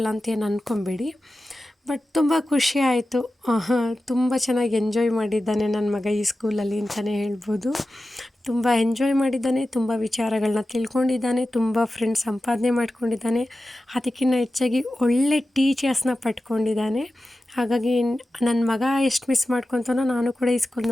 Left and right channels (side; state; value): both; normal; correlation 0.94